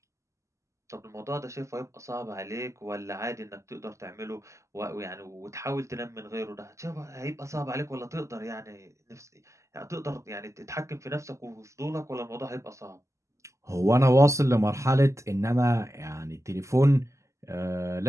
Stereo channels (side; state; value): left; late; 0.14 ms